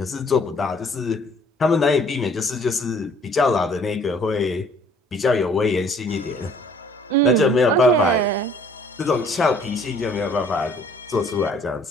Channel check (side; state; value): both; normal; correlation 0.57